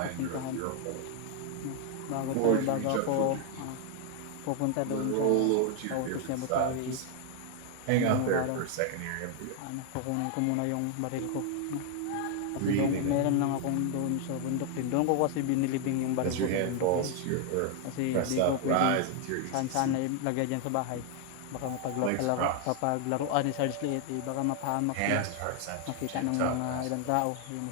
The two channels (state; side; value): different; both; correlation 0.00